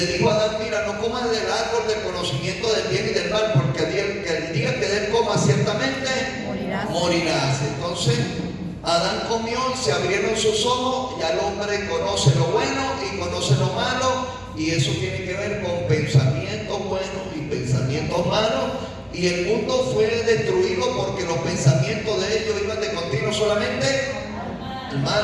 dijo a Adán: mira, no comas del árbol del conocimiento del bien y del mal, porque el día que él coma ciertamente morirás. Entonces Adán comió, se abrieron sus ojos, ya el hombre conoce lo bueno y conoce lo malo, y eso tiene que ver con pensamientos buenos y pensamientos malos. Y el mundo fue destruido porque los pensamientos de ellos iban de continuo solamente al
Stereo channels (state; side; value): identical; both; correlation 1.00